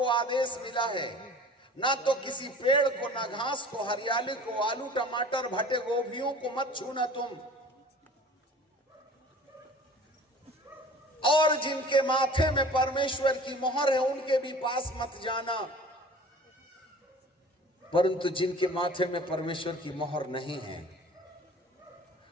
आदेश मिला है, ना तो किसी पेड़ को, ना घास को, हरियाली को, आलू टमाटर भटे गोभियों को मत छूना तुम। और जिनके माथे में परमेश्वर की मोहर है उनके भी पास मत जाना। परंतु जिनके माथे में परमेश्वर की मोहर नहीं है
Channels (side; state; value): both; normal; correlation 0.44